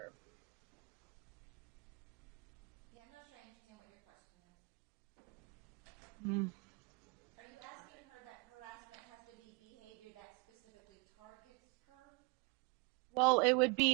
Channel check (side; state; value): left; quieter; 31.3 dB